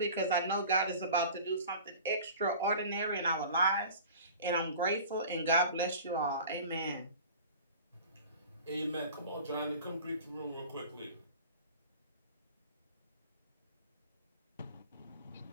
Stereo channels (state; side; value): inverted; both; correlation -0.41